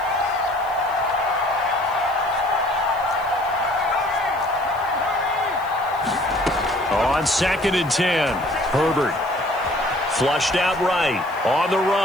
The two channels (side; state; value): left; noise; hiss, 25 dB below the sound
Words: On 2nd and 10, Herbert. Flushed out right. On the